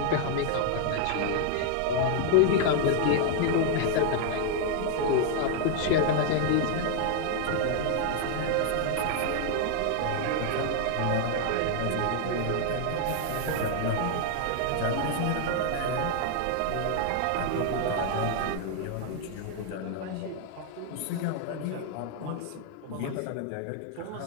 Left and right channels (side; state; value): both; different; correlation 0.00